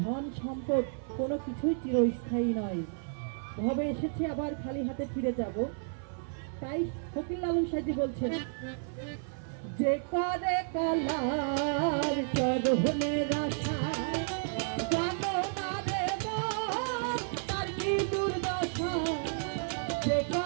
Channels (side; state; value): left; silent; 57 dB below the other